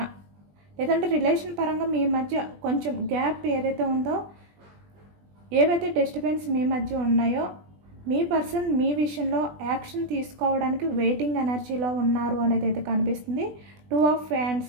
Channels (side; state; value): left; late; 20 ms